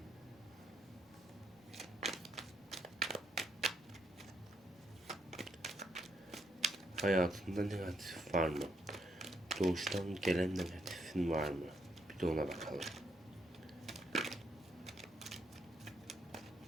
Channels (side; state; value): both; normal; correlation 0.76